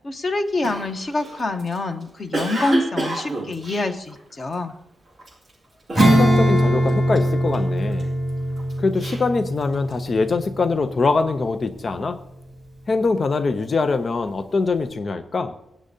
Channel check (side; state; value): both; normal; correlation 0.90